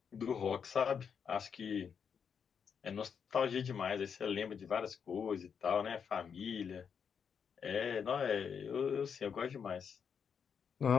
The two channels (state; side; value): quieter; right; 6.9 dB